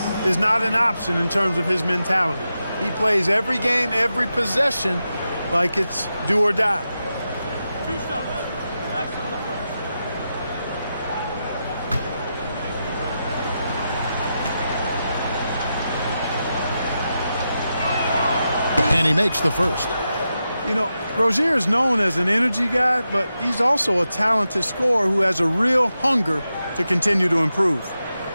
is not an option in terms of his mentality. He plays every game, every possession like it's do or die. 2 stops. Relax on the first. And he makes the first. You know, Rozier is known as an energy guy, but he's also a talented scorer who has a real hunger to continue to improve.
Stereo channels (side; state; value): both; inverted; correlation -0.88